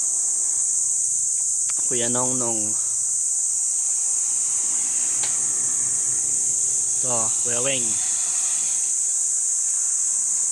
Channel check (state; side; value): identical; both; correlation 1.00